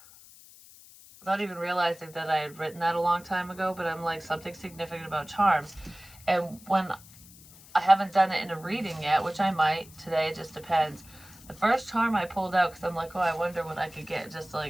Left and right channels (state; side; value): noise; left; hiss, 21 dB below the sound